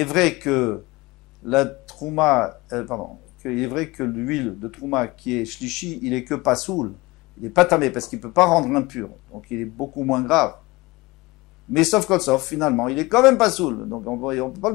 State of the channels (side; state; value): right; quieter; 22.3 dB